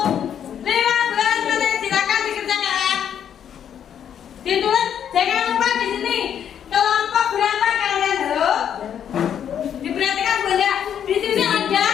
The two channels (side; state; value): right; quieter; 9.0 dB